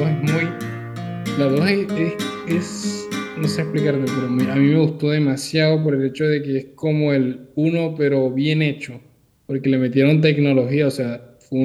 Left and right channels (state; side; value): identical; both; correlation 1.00